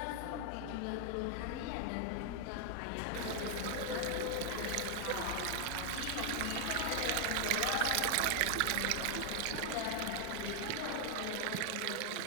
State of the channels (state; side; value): different; both; correlation 0.00